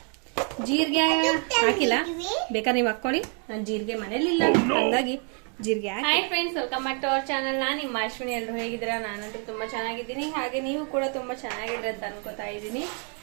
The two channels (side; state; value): left; quieter; 39.6 dB